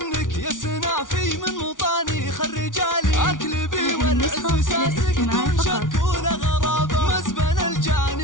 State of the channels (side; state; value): right; late; 0.88 ms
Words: يا سنافي من مطانيخ الرجالي. اكلبي والعز ساسك دون شك ولا غرابة، مزبل